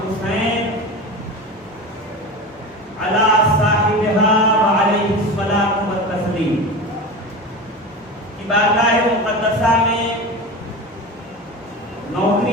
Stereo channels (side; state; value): both; normal; correlation 0.28